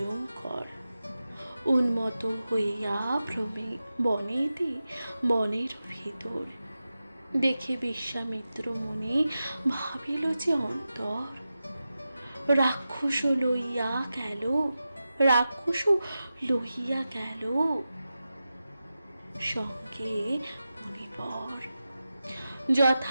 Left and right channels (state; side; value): inverted; both; correlation -0.93